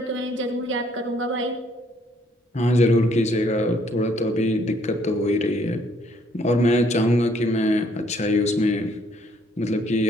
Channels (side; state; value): both; normal; correlation 0.65